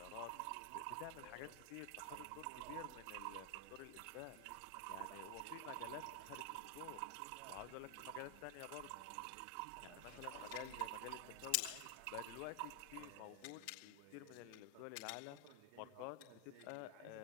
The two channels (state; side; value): different; both; correlation 0.00